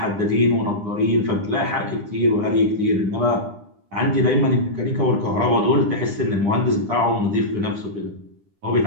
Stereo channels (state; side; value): late; left; 9.9 ms